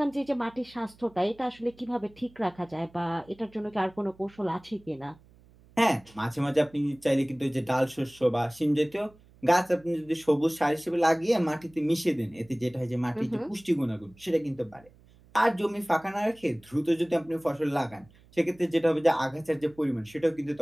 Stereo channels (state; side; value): noise; right; hum, 27 dB below the sound